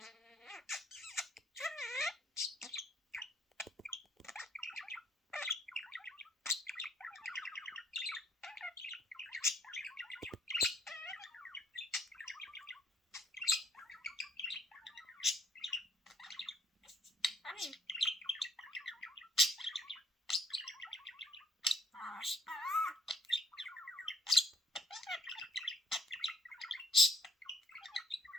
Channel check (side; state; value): both; normal; correlation 0.64